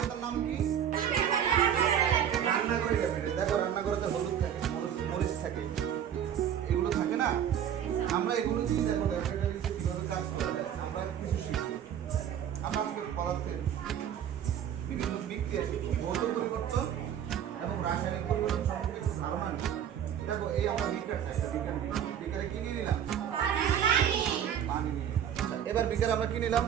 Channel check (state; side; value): quieter; left; 9.4 dB